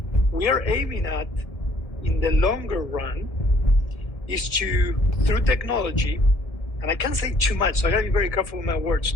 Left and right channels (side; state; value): right; late; 1.7 ms